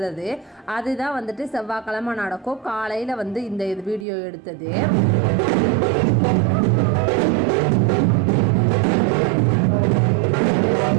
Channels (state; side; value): drops out; left; at 4.0 s